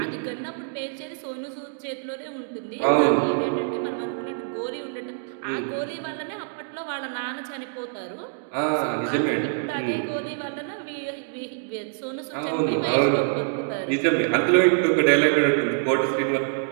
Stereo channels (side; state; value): left; silent; digital silence